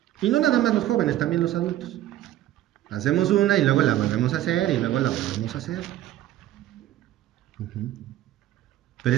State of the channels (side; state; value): left; quieter; 13.5 dB